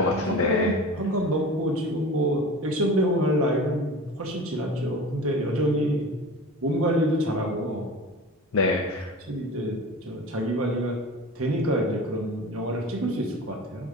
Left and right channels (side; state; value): both; normal; correlation 0.35